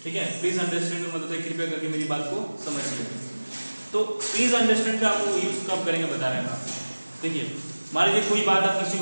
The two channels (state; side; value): inverted; both; correlation -1.00